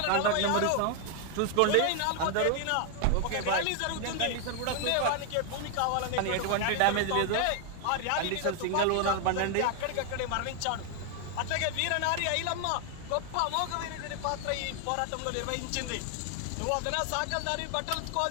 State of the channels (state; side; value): different; both; correlation 0.00